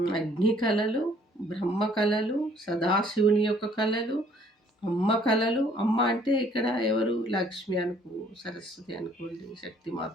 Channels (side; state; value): both; normal; correlation 0.60